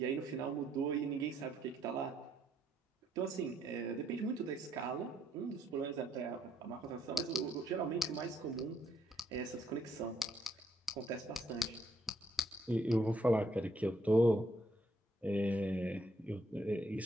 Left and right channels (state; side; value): normal; both; correlation 0.72